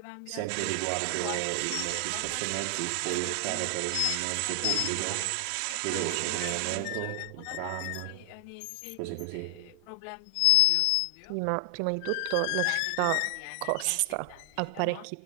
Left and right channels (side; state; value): both; different; correlation 0.00